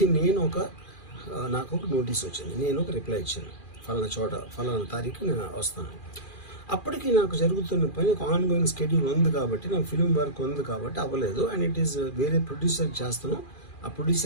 నాకు ఒక notice వచ్చింది, నేను ఒక రిప్లై ఇచ్చాను, ఫలానా చోట ఫలానా తారీఖు నేను వస్తాను. అప్పటికి నాకు జరుగుతున్న పని ఒక ఆన్గోయింగ్ స్కెడ్యూల్ ఉంది కాబట్టి, నాకు ఫిల్మ్ వర్క్ ఉంది కాబట్టి అవ్వలేదు. అండ్ ఇట్ ఈస్ వేరే ప్రొడ్యూసర్కి చేస్తాను, ఆ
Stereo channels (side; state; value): right; late; 2.4 ms